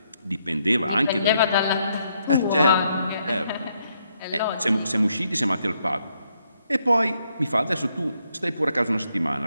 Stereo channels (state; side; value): inverted; both; correlation -0.76